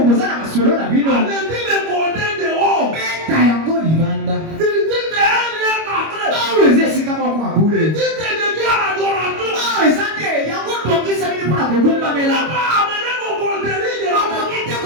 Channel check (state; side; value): late; left; 25 ms